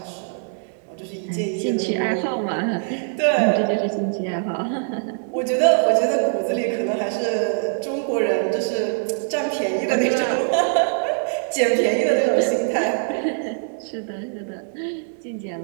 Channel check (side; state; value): left; silent; digital silence